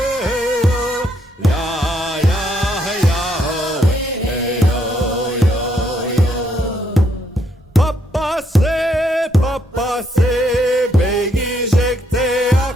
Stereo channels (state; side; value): normal; both; correlation 0.73